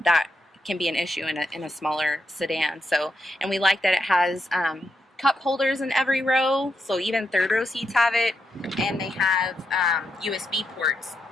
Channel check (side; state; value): both; normal; correlation 0.82